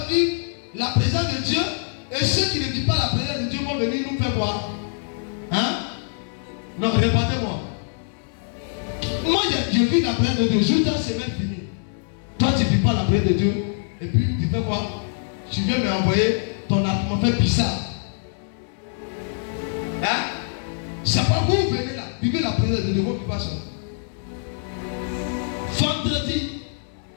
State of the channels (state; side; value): silent; right; digital silence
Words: vivre la présence de Dieu. Et ceux qui ne vivent pas la présence de Dieu vont venir nous faire quoi? Hein? Non, répétez-moi. Moi, je vis la présence de Dieu. Juste la semaine finie. Toi, tu ne vis pas la présence de Dieu. Et puis, tu fais quoi? Tu viens m'envoyer ton argument fait bizarre. Hein? C'est pas vous venez là. Vivez la présence de Dieu. Vous ne pas ça. Vendredi.